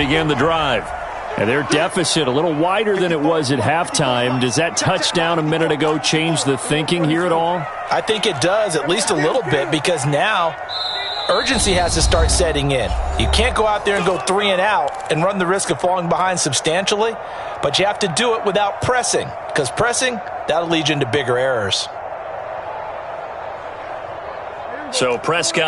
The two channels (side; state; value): both; identical; correlation 1.00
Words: the drive. And their deficit a little wider than it was at halftime. Does that touchdown a minute ago change the thinking here at all? I think it does, at least a little bit, because now urgency has to start setting in. You can't go out there and go 3 and out and run the risk of falling behind substantially, but you have to do it without pressing, because pressing, that'll lead you into bigger errors. So